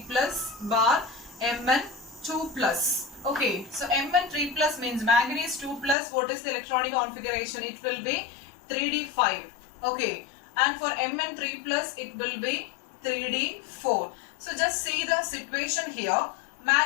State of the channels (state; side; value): drops out; right; at 6.0 s